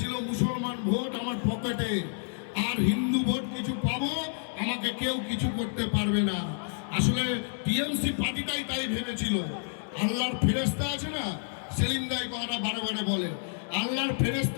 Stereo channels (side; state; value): right; silent; 58 dB below the other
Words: মুসলমান ভোট আমার পকেটে আর হিন্দু ভোট কিছু পাবো, আমাকে কেউ কিছু করতে পারবে না। আসলে টিএমসি পার্টিটাই তাই ভেবেছিল। আল্লাহর ফেরেশতা আছে না, সেলিম দাই কথাটা বারে বারে বলে, আল্লাহর